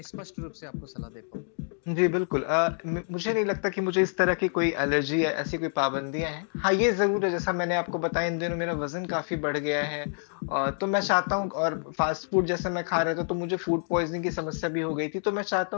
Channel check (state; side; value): silent; right; digital silence